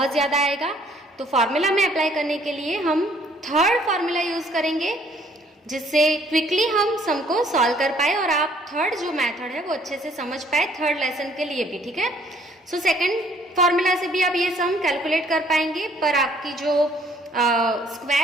ज्यादा आएगा, तो फार्मूला में अप्लाई करने के लिए हम थर्ड फार्मूला यूज करेंगे, जिससे क्विकली हम सम को सॉल्व कर पाए और आप थर्ड जो मेथड है वो अच्छे से समझ पाए थर्ड लेसन के लिए भी, ठीक है। सो सेकंड फार्मूला से भी आप ये सम कैलकुलेट कर पाएंगे, पर आपकी जो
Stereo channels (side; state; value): both; normal; correlation 0.62